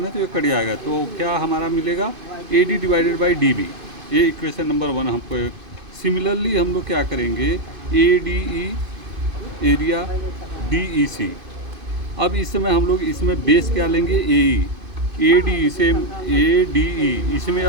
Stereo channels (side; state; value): left; late; 2.5 ms